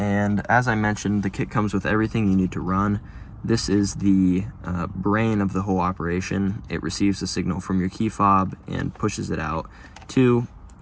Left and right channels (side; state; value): both; identical; correlation 1.00